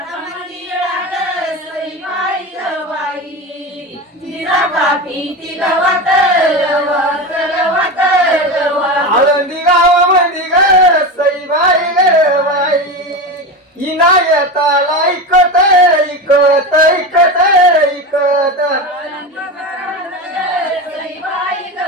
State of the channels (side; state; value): both; normal; correlation 0.22